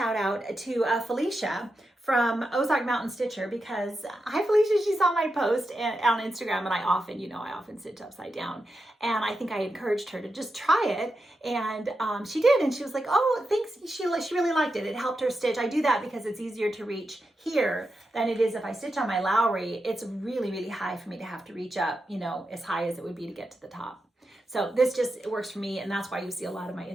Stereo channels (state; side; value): normal; both; correlation 0.88